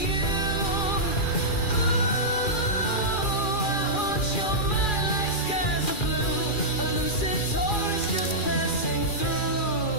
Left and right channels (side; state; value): right; late; 2.4 ms